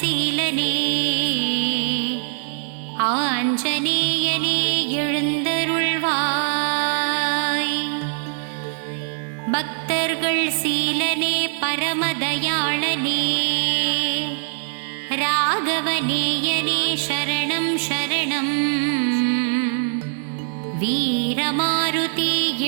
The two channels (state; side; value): silent; left; digital silence